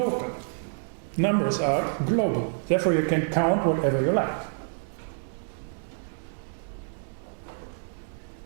Numbers are global. Therefore you can count whatever you like.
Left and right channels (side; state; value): left; silent; digital silence